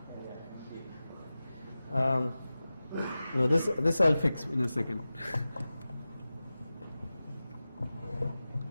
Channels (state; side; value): inverted; both; correlation -0.96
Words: No, this I'll fix in a second.